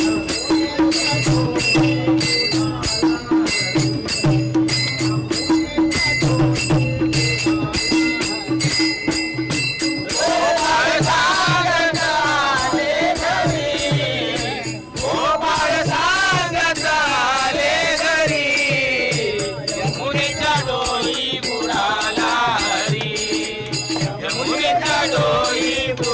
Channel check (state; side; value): identical; both; correlation 1.00